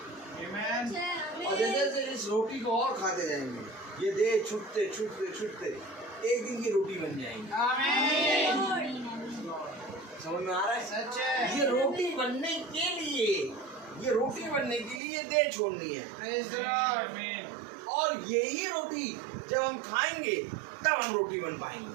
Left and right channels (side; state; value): left; drops out; at 15.0 s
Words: आमीन। और जैसे जैसे इस रोटी को और खाते जाएंगे, ये देह छूटते छूटते छूटते एक दिन की रोटी बन जाएंगी। आमीन। समझ में आ रहा है? सच है। ये रोटी बनने के लिए, ये रोटी बनने के लिए देह छोड़नी है। Praise the Lord. और यही रोटी जब हम खाएंगे तब हम रोटी बन